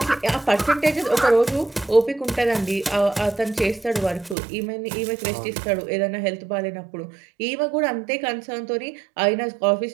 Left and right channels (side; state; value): left; drops out; at 4.4 s